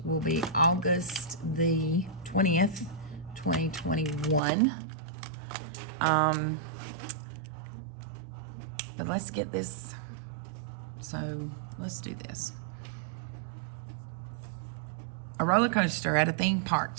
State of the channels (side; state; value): left; drops out; at 4.4 s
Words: will be August the 20th, 2021. But let's get this. So let's do this. A roller coaster at a theme park